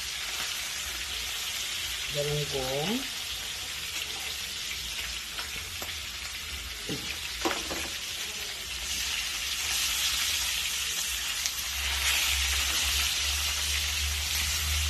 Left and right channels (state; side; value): identical; both; correlation 1.00